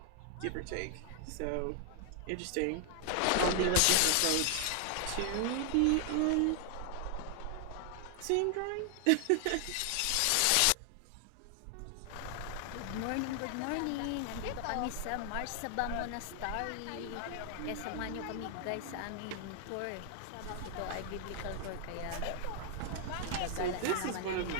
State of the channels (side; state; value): both; different; correlation 0.00